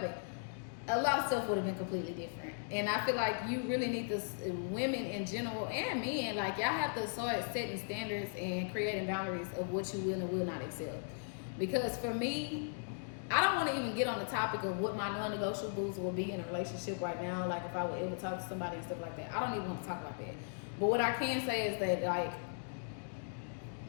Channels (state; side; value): silent; right; digital silence